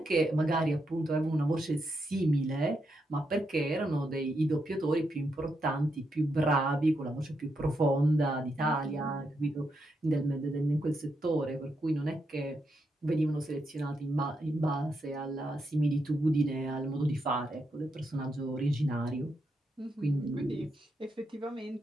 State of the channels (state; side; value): normal; both; correlation 0.82